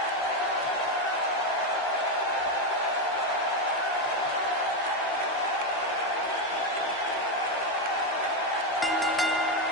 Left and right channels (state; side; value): normal; both; correlation 0.08